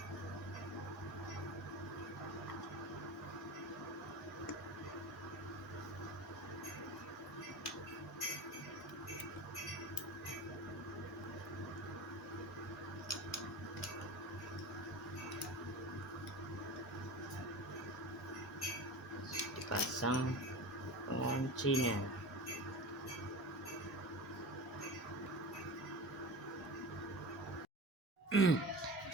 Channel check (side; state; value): both; normal; correlation 0.31